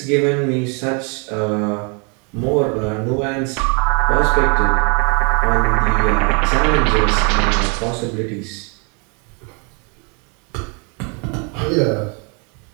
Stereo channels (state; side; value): quieter; left; 34.6 dB